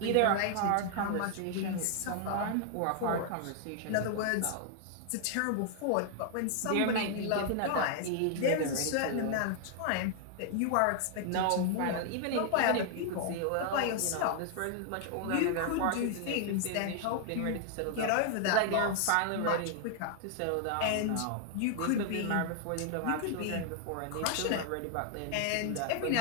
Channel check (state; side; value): different; both; correlation 0.00